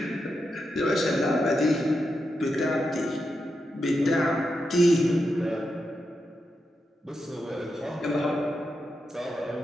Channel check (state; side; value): normal; both; correlation 0.86